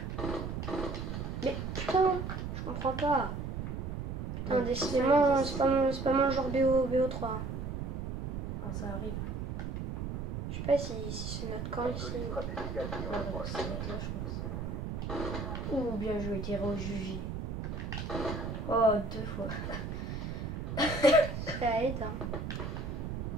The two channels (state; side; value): noise; right; rumble, 4 dB below the sound